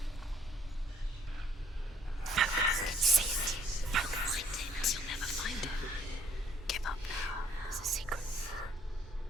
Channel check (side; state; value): both; normal; correlation 0.60